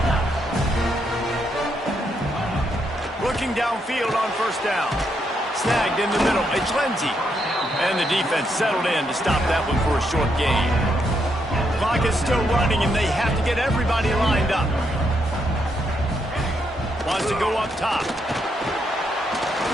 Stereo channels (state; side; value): normal; both; correlation 0.78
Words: Looking downfield on 1st down. Snagged in the middle, it's Lindsey. And the defense settled in to stop that one for a short gain. Clock is still running, and they have to get everybody lined up. Wants to go up top.